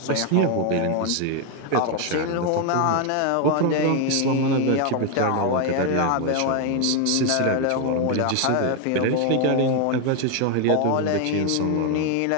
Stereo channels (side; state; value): both; different; correlation 0.01